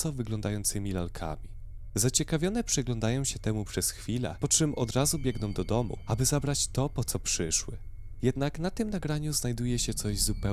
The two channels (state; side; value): identical; both; correlation 1.00